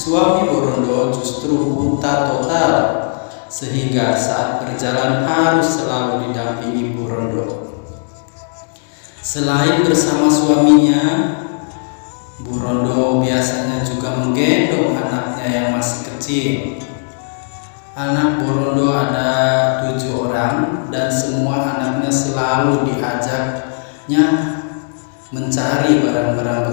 Bu Rondo justru buta total, sehingga saat berjalan harus selalu didampingi Bu Rondo. Selain bersama suaminya, Bu Rondo biasanya juga menggendong anaknya yang masih kecil. Anak Bu Rondo ada 7 orang dan semua anaknya selalu diajaknya mencari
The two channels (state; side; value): silent; right; digital silence